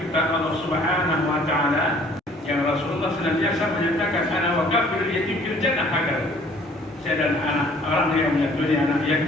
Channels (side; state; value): both; normal; correlation 0.56